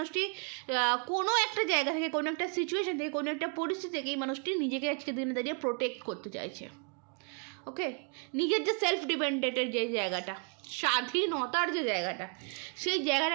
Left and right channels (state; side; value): quieter; left; 39.0 dB